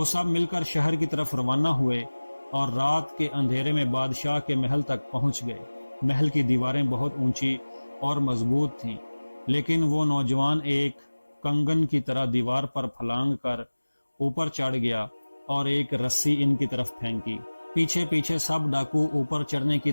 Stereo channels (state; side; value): inverted; both; correlation -1.00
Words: سب مل کر شہر کی طرف روانہ ہوئے اور رات کے اندھیرے میں بادشاہ کے محل تک پہنچ گئے۔ محل کی دیواریں بہت اونچی اور مضبوط تھیں، لیکن وہ نوجوان ایک کنگن کی طرح دیوار پر پھلانگ کر اوپر چڑھ گیا اور ایک رسی ان کی طرف پھینکی۔ پیچھے پیچھے سب ڈاکو اوپر چڑھنے کی